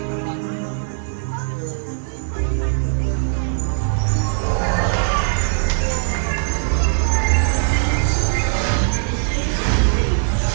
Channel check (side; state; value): left; silent; digital silence